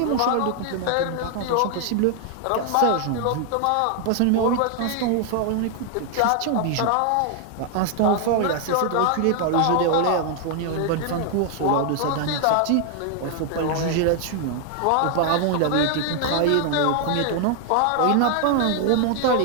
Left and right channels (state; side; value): different; both; correlation 0.00